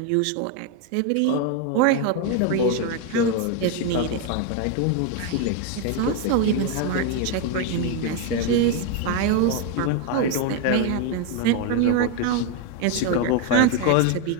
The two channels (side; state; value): both; different; correlation 0.01